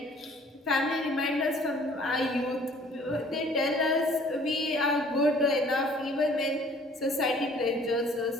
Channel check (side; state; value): both; normal; correlation 0.55